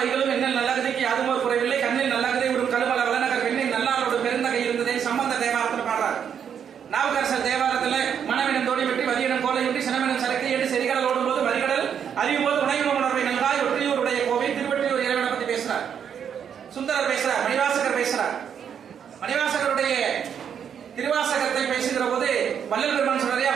வைகளும் எண்ணில் நல்லகதைக்கு யாதுமோ குறைவில்லை, கண்ணில் நல்லகதை ஒரு கழுமல வளநகர் பெண்ணில் நல்லாரோடு பெருந்தகை இருந்ததே சம்பந்த தேவாரத்தில் பாடுறார். நாவுக்கரசர் தேவாரத்தில் மனவினம் தோடி வெட்டி வதியினம் கோலையுண்டி சினவினம் சரக்கை என்று செறிகடல் ஓடும் போது வரிகடல் அறியும் போது உணவு உணர்வை நல்காய் ஒற்றியூருடைய கோவை திருவற்றியூர் இறைவனை பத்தி பேசுறார். சுந்தரர் பேசுறார், மணிவாசகர் பேசுறார். மணிவாசகருடைய திருவாசகத்தை பேசுகிற போது வள்ளல் பெருமான் சொல்றாரு,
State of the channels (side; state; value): left; quieter; 8.1 dB